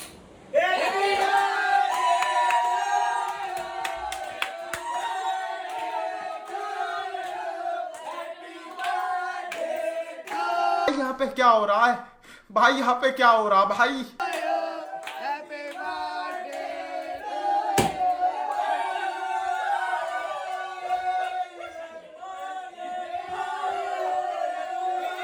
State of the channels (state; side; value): identical; both; correlation 1.00